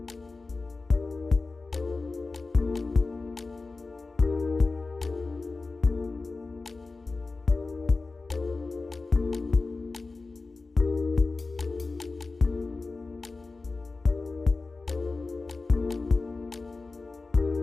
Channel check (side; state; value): right; quieter; 3.7 dB